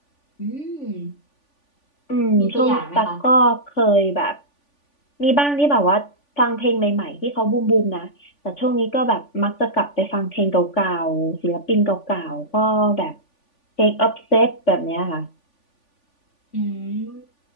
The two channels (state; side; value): late; right; 3.5 ms